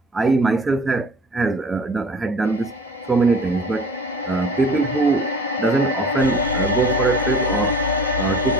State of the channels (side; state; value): both; normal; correlation 0.44